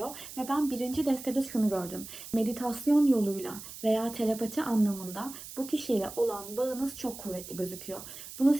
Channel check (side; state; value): right; noise; hiss, 13 dB below the sound